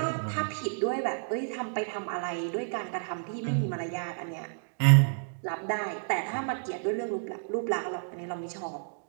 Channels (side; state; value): left; silent; digital silence